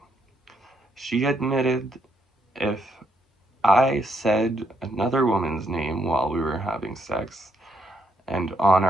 She admitted if I said another woman's name while we were having sex and on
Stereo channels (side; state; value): both; normal; correlation 0.75